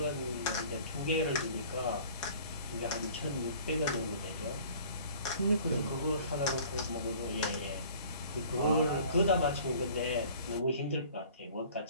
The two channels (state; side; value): inverted; both; correlation -0.49